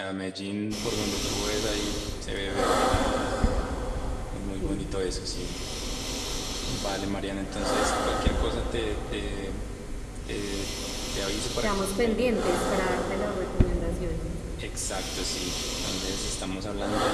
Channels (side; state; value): both; identical; correlation 1.00